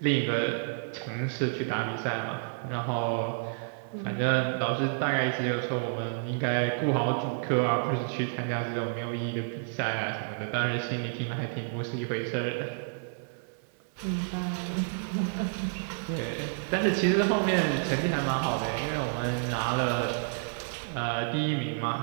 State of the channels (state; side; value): silent; left; 58 dB below the other